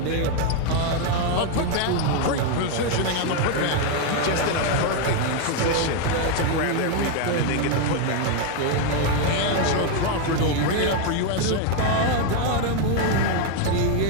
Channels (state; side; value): different; both; correlation 0.01